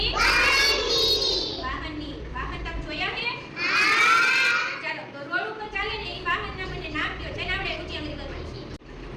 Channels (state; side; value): identical; both; correlation 1.00